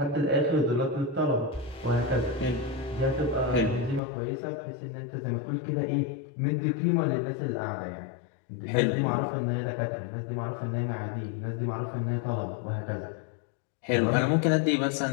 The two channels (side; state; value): right; drops out; at 4.0 s